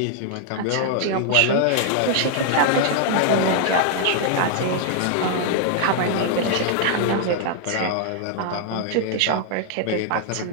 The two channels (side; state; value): both; different; correlation -0.01